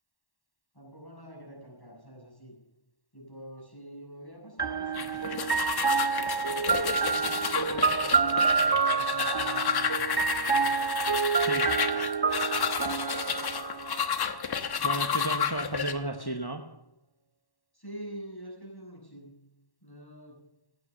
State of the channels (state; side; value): late; right; 1.1 ms